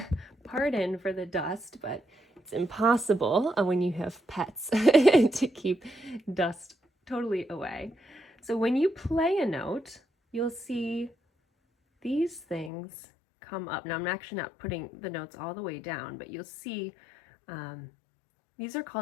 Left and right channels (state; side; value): drops out; right; at 12.7 s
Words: pardon for the dust, but it's impossible when you have pets to keep dust totally away. So when you play a note, you'll see these things come up. Now, I'm actually not putting the notes all the way down, but you'll see these are